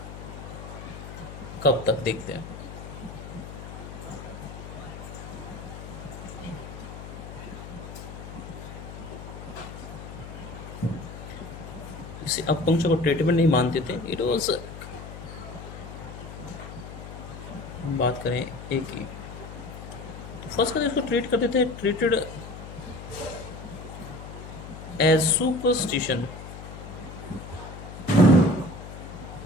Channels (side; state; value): left; noise; hum, 11 dB below the sound